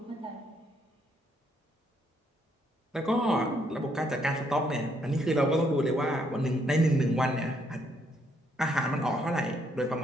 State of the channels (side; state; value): both; normal; correlation 0.72